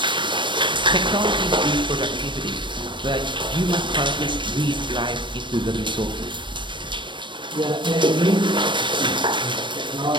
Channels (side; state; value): left; late; 0.23 ms